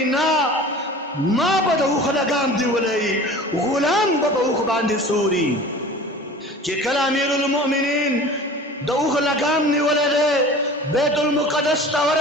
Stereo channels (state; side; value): normal; both; correlation 0.41